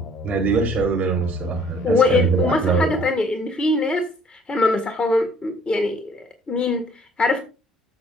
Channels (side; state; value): both; normal; correlation 0.57